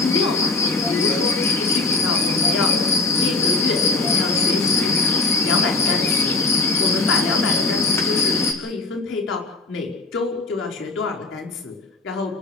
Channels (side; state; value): right; quieter; 3.5 dB